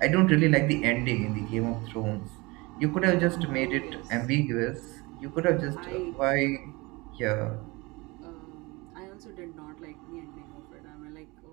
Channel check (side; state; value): left; quieter; 24.5 dB